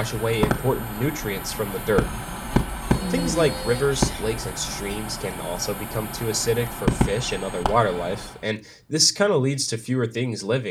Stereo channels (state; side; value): identical; both; correlation 1.00